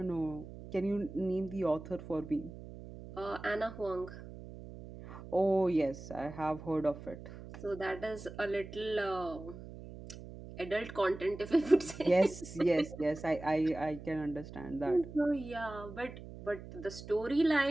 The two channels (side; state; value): right; noise; hum, 13 dB below the sound